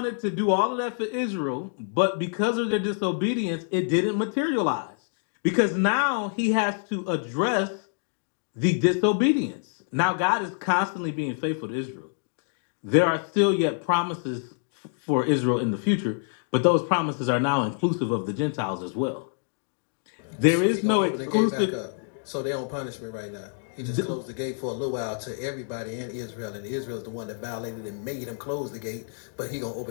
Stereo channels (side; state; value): right; silent; digital silence